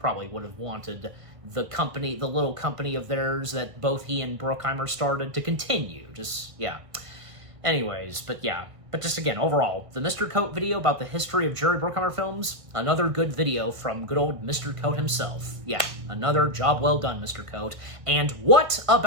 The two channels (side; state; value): left; late; 1.6 ms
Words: would have wanted the company, the little company of theirs that both he and Bruckheimer started, to continue. Just, yeah. Anyways, but yeah. But just again, overall, the Mr. Coat video about the history of Jerry Bruckheimer films, another good video from good old Mr. Coat himself. Yeah, another job well done, Mr. Coat. And what